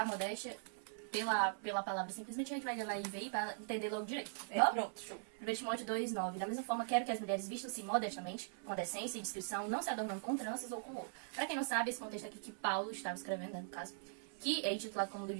modéstia, pela palavra, simplesmente a gente vai ler lá em VI para entender logo direito. Pronto, show. 1 Timóteo 2, 9. Da mesma forma, quero que as mulheres vistam-se modestamente, com decência e discrição, não se adornando com tranças ou com ouro. Para quem não sabe, esse contexto aqui que Paulo estava escrevendo, né, no caso, que é intitulado como do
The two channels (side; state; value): left; silent; 50 dB below the other